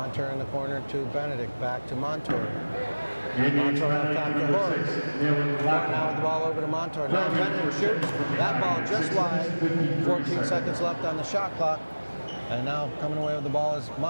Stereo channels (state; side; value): inverted; both; correlation -1.00